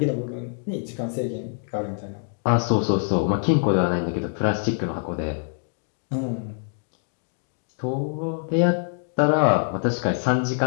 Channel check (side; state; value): right; silent; 62 dB below the other